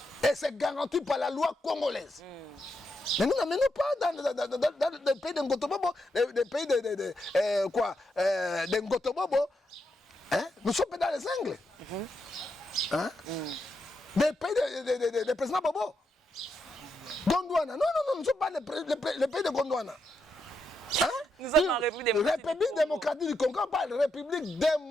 Et c'est garanti par la loi congolaise. Mais nous n'amenons pas dans le pays de Ngotobobo, des pays de Ngotobobo. Hein? Nous sommes dans les Anglais. Hein? Des pays de président Bobo. Gondwana. Non, nous ne sommes pas le pays de Gondwana. Hein? Nous sommes en République démocratique du Congo, pas la République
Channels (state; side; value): normal; both; correlation 0.82